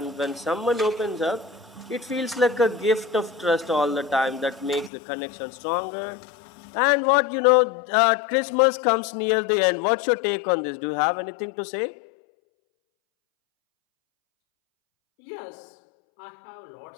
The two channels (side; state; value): right; drops out; at 4.9 s